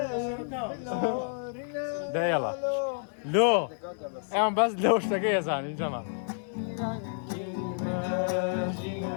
ده يلا لو اعمل بس لو اشتكي يا زلمه جماعه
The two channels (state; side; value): silent; right; 58 dB below the other